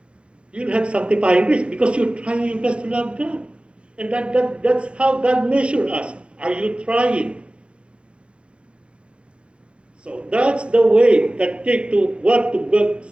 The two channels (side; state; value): left; late; 0.058 ms